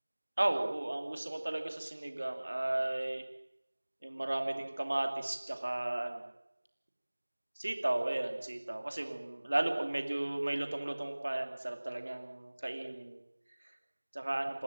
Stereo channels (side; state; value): both; inverted; correlation -1.00